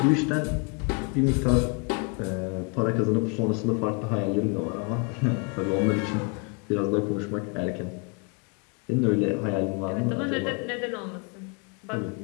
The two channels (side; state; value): right; quieter; 33.5 dB